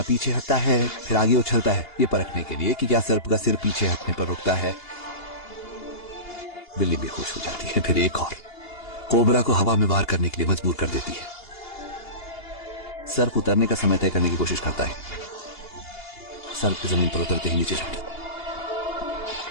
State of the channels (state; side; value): late; right; 2.8 ms